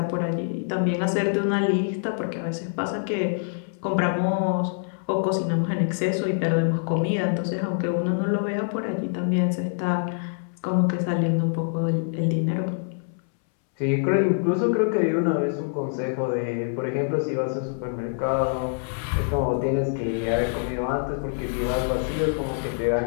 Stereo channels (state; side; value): silent; right; 62 dB below the other